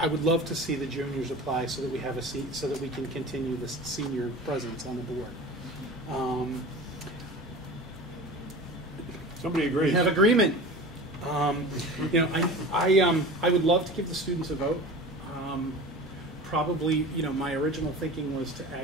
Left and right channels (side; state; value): both; normal; correlation 0.35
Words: would love to see the juniors apply so that we have a seat, so that we can continue this senior presence on the board. Somebody agrees. We have agreement. I would love to give the students a vote. Probably, my original thinking was to